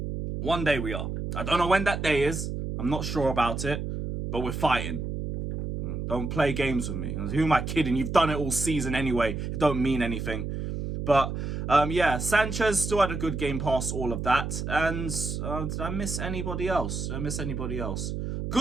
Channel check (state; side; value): noise; right; hum, 4 dB below the sound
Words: One day we are. I don't know when that day is. I'm not sure about it. But we're fighting. Don't play games with me. Who am I kidding? You've done it all season anyway. It don't mean anything. But, yeah, Sanchez still had a good game past all of that. And did I miss anybody else?